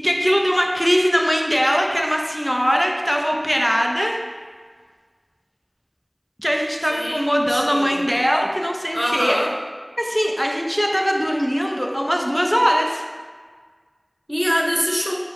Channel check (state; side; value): identical; both; correlation 1.00